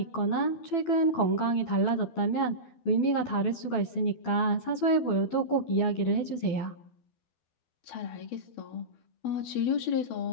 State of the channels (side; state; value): right; late; 12 ms